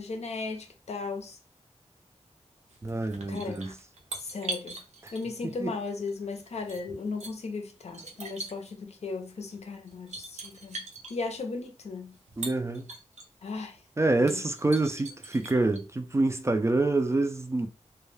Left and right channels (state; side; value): normal; both; correlation 0.83